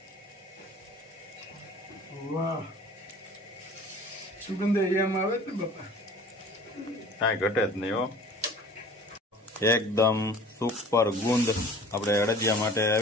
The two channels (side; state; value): both; normal; correlation 0.45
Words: વાહ, સુગંધ એમ આવે ને બાપા, કાંઈ ઘટે જ નહીં હો. એકદમ સુપર ગુંદ આપણે અડદિયા માટે